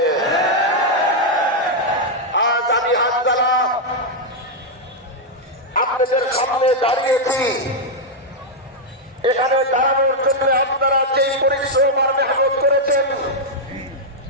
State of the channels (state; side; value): normal; both; correlation -0.02